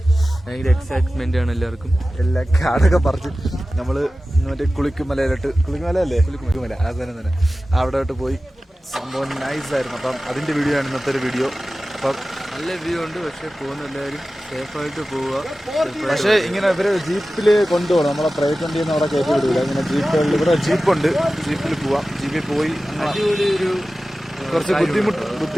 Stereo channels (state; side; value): normal; both; correlation 0.95